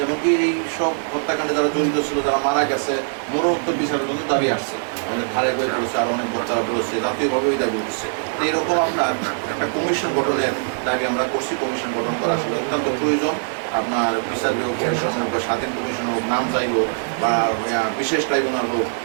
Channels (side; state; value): left; silent; digital silence